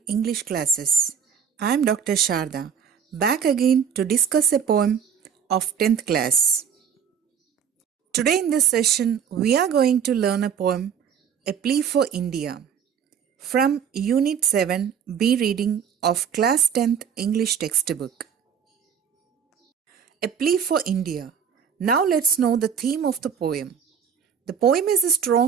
English Classes. I am Dr. Sharada, back again to discuss a poem of 10th class. Today in this session, we are going to learn a poem, A Plea for India, from Unit 7 B reading of Class 10th English textbook. A Plea for India. Now let's know the theme of the poem. The poem is a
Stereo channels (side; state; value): left; quieter; 7.4 dB